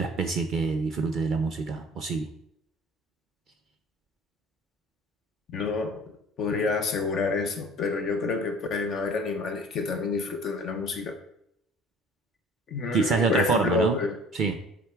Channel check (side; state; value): both; normal; correlation 0.48